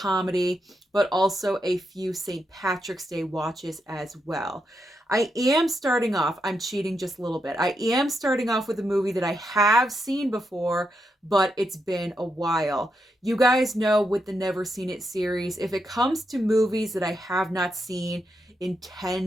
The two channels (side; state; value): both; normal; correlation 0.83